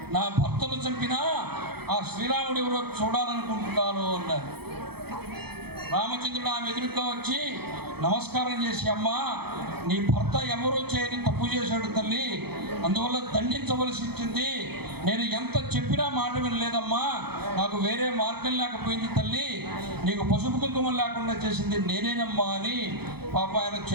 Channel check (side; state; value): left; late; 0.97 ms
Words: నా భర్తను చంపినా ఆ శ్రీరాముడు ఎవరో చూడాలనుకుంటున్నాను అన్నారు. రామచంద్రుడు ఆమె ఎదురుగా వచ్చి నమస్కారం చేసి, అమ్మా నీ భర్త ఎవరో చేయని తప్పు చేశాడు తల్లి, అందువల్ల దండించవలసి వచ్చింది. నేను ఎంత చెప్పినా మాట వినలేదమ్మా, నాకు వేరే మార్గం లేకపోయింది తల్లి, నీకు పసుపు కుంకుమం లేకుండా చేసింది నేనేనమ్మా అని పాప ఆయన